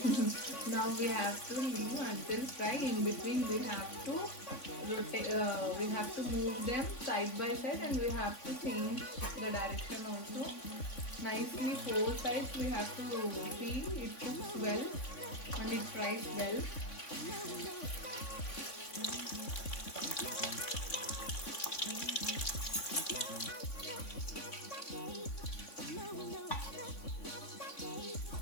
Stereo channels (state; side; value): late; right; 3.5 ms